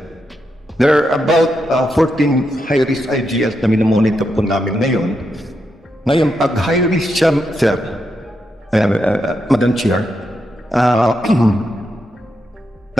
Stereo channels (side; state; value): both; normal; correlation 0.83